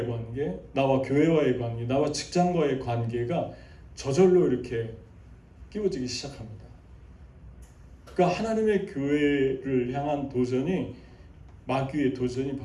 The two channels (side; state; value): both; identical; correlation 1.00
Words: 관계, 나와 교회와의 관계, 나와 직장과의 관계가 저절로 이렇게 끼워지기 시작합니다. 그러니까 하나님의 교회를 향한 도전이, 마귀의 도전이